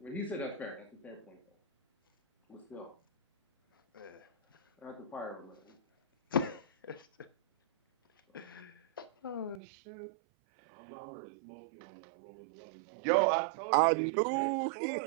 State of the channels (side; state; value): left; drops out; at 9.6 s